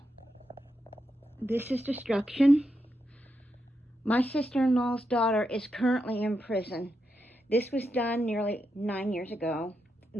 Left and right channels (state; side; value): normal; both; correlation 0.84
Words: This is destruction. My sister-in-law's daughter is currently in prison. This was done nearly 9 years ago.